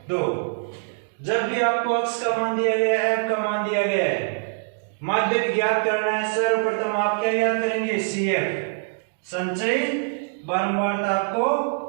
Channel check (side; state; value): left; silent; digital silence